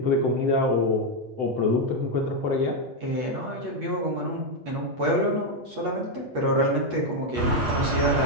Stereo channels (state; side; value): late; left; 8.4 ms